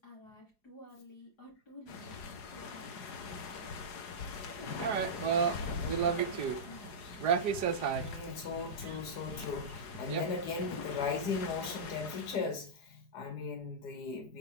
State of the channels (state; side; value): late; right; 4.8 ms